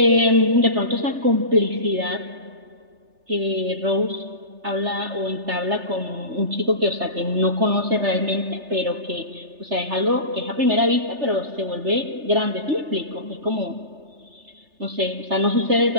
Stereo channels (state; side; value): late; left; 3.3 ms